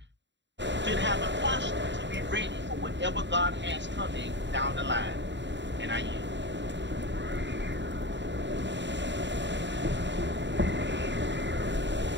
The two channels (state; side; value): late; left; 0.52 ms